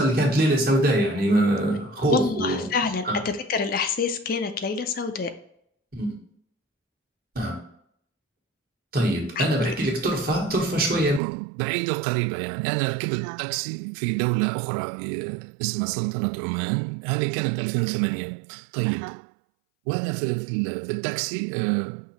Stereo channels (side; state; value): left; drops out; at 11.2 s